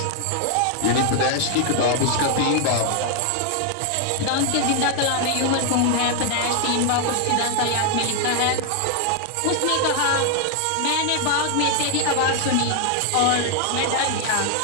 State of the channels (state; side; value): different; both; correlation 0.00